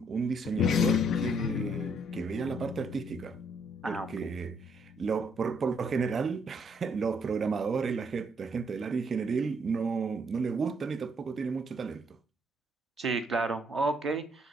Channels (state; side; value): normal; both; correlation 0.70